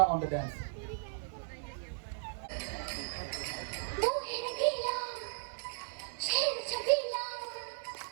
on the dance. वो है रंगीला, शेर छबीला,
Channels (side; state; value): left; silent; digital silence